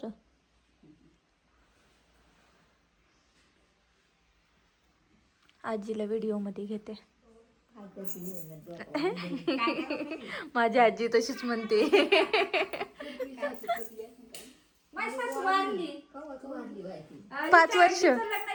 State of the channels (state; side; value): identical; both; correlation 1.00